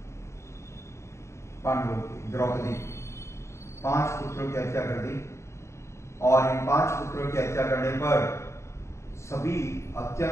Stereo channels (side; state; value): right; late; 0.14 ms